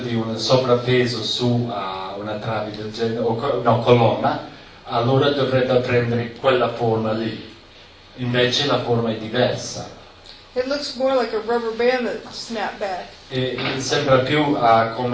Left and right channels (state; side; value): identical; both; correlation 1.00